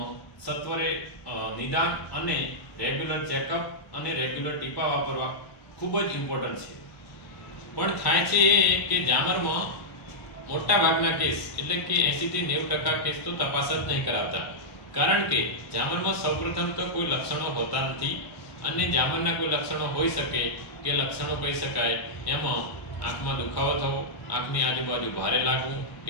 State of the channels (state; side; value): late; right; 1.0 ms